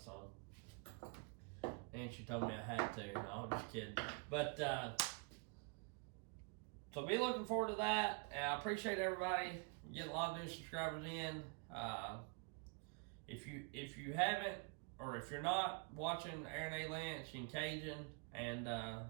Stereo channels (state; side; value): quieter; left; 32.8 dB